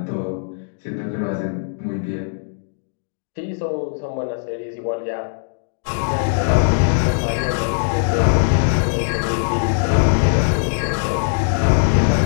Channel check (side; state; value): right; silent; digital silence